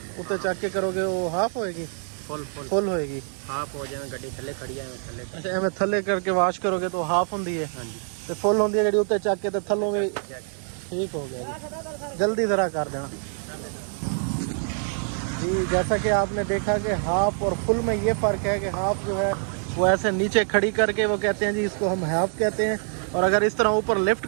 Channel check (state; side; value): silent; left; 61 dB below the other